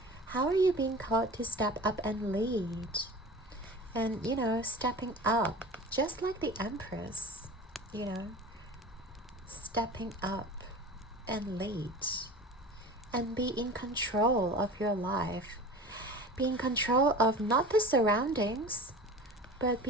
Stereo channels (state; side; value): normal; both; correlation 0.36